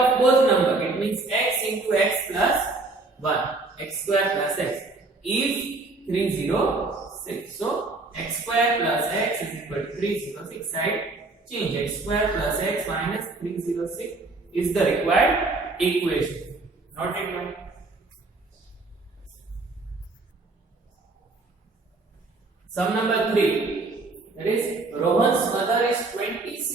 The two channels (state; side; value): quieter; left; 3.3 dB